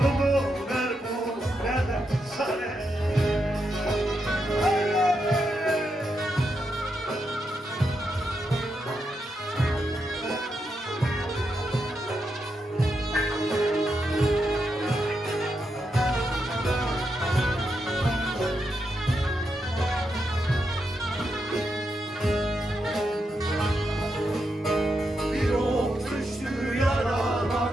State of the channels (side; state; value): both; normal; correlation 0.84